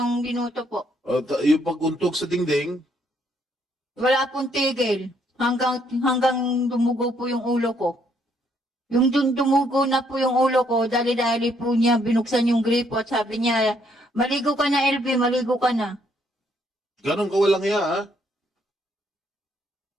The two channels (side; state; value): both; normal; correlation 0.70